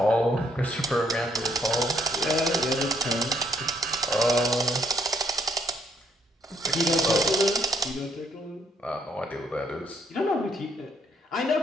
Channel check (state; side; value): normal; both; correlation 0.70